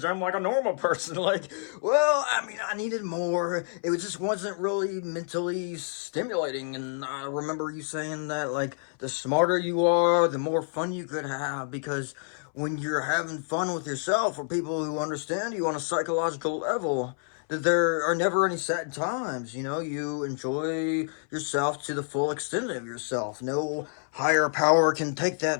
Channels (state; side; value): silent; right; 59 dB below the other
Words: like a normal person? Like, well, I mean, I needed more. It just wasn't really mentally stimulating. And I remember you saying that, like, the smarter you are, the more fun you could have. Because when you're having fun with yourself or people who understand you on a psychological level, that there are never any sad times. You enjoy yourself to the full extent of yourself. No higher power can take